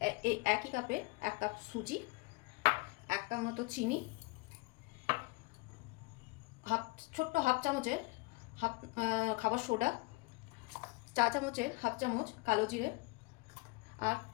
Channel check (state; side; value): quieter; right; 25.9 dB